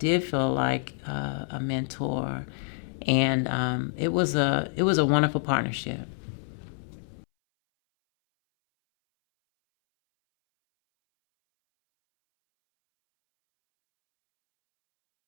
feel like a mentor, and it was a wonderful partnership.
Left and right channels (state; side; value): silent; right; 60 dB below the other